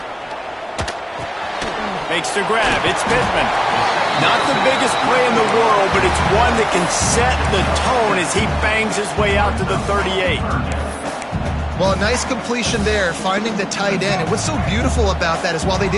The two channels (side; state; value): both; identical; correlation 1.00